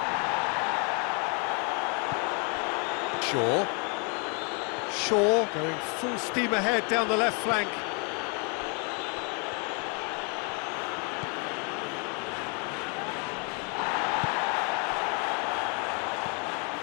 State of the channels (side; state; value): right; quieter; 36.0 dB